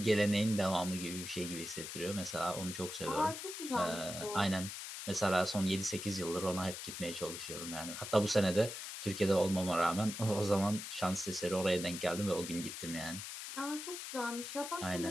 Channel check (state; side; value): noise; left; hiss, 8 dB below the sound